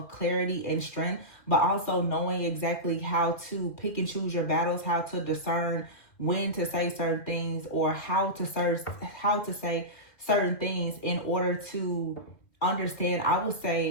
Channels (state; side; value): late; right; 2.3 ms